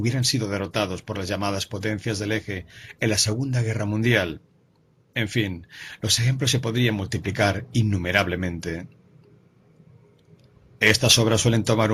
sido derrotados por las llamadas potencias del eje en la Segunda Guerra Mundial. En fin, los ejemplos se podrían multiplicar innumerablemente. Estas obras suelen tomar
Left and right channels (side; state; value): both; identical; correlation 1.00